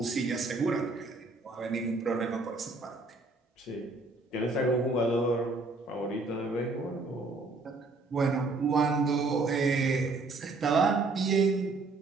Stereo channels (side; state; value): left; quieter; 3.5 dB